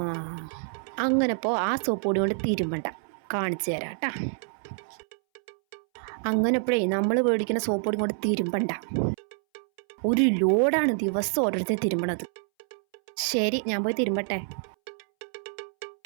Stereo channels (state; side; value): silent; left; 60 dB below the other